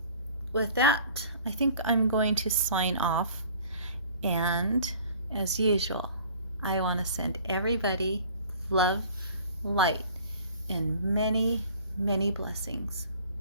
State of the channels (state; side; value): inverted; both; correlation -0.48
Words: with that, I think I'm going to sign off, and as usual, I want to send everybody love, light, and many, many blessings.